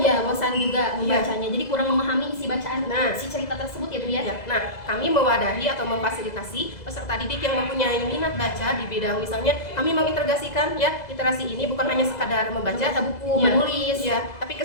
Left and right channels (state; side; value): late; right; 2.0 ms